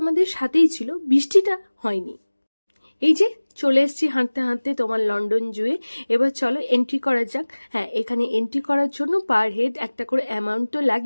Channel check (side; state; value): both; inverted; correlation -1.00